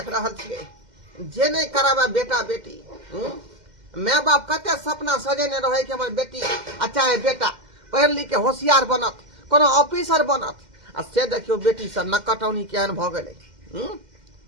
रहल छियै जे नहीं कराबा बेटा बेटी माय बाप कते सपना सजेने रहे कि हमर बेटी अच्छा है बेटा पढ़ लिख के होशियार बनत कोनो ऑफिसर बनत आ से देखियो बेटी सब नकटौनी केहन भ गेलै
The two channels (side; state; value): left; late; 2.1 ms